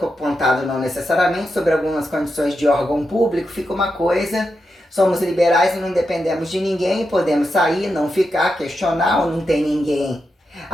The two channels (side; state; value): both; normal; correlation 0.87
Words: não necessariamente sobre algumas condições de órgão público, fica uma coisa, somos liberais e não dependemos de ninguém, podemos sair, não ficar, questionar, ou não tem ninguém